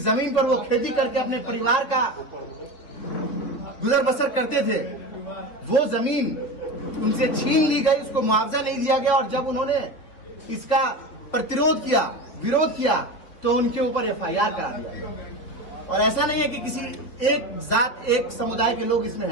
जमीन पर वो खेती करके अपने परिवार का गुजर बसर करते थे, वो जमीन उनसे छीन ली गई, उसको मुआवजा नहीं दिया गया और जब उन्होंने इसका प्रतिरोध किया, विरोध किया, तो उनके ऊपर एफआईआर करा दिया गया। और ऐसा नहीं है कि किसी एक जात, एक समुदाय के लोग इसमें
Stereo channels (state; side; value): late; right; 4.1 ms